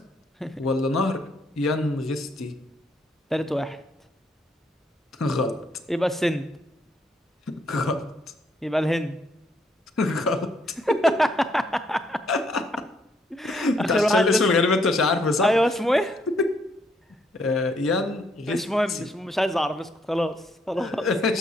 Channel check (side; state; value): both; normal; correlation 0.71